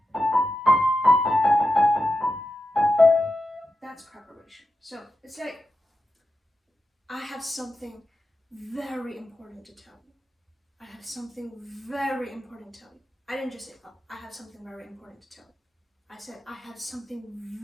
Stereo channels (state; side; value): normal; both; correlation 0.90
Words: That's preparation. So it's like I have something very important to tell you. I have something very important to tell you. I didn't just say, oh, I have something very important to tell you. I said, I have something